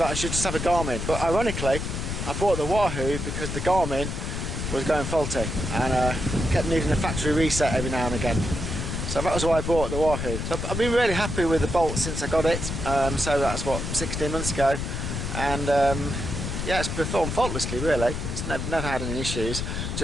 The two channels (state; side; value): noise; left; rumble, 4 dB below the sound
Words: I should just have a Garmin, but ironically I bought the Wahoo because the Garmin was going faulty and kept needing a factory reset every now and again. So that was why I bought the Wahoo. So I've been really happy with the Bolt since I got it. So that's what, 16 months ago, and yeah, it's performed faultlessly really. It's never had any issues,